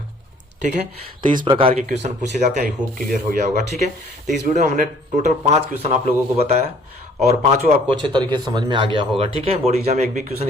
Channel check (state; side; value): normal; both; correlation 0.57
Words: ठीक है। तो इस प्रकार के क्वेश्चन पूछे जाते हैं, आई होप क्लियर हो गया होगा, ठीक है। तो इस वीडियो में हमने टोटल 5 क्वेश्चन आप लोगों को बताया और पांचों आपको अच्छे तरीके से समझ में आ गया होगा, ठीक है। बोर्ड एग्जाम में एक भी क्वेश्चन